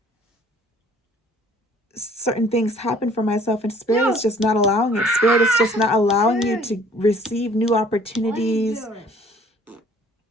certain things happen for myself, and Spirit is just not allowing it. Spirit is just not allowing you to receive new opportunities.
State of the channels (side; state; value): both; normal; correlation 0.56